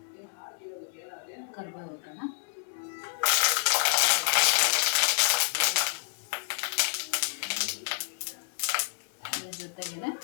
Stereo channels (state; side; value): silent; right; digital silence